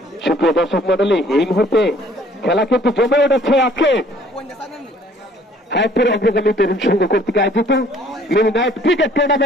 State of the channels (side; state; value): both; normal; correlation 0.58